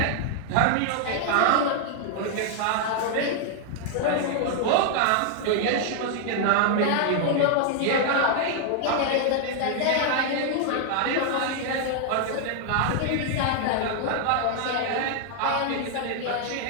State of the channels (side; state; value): both; different; correlation 0.00